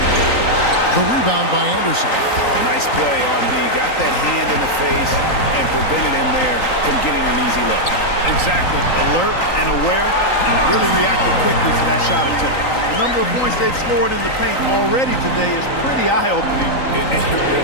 The rebound by Anderson. Oh, nice play on D. Got that hand in the face and prevented him there from getting an easy look. Exactly. Alert and aware. Really reacted quickly to that shot attempt. The number of points they've scored in the paint already today is pretty eye-opening. It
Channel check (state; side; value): late; right; 3.9 ms